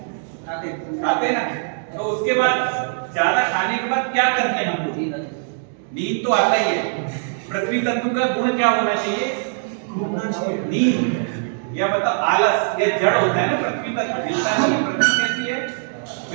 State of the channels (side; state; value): left; silent; digital silence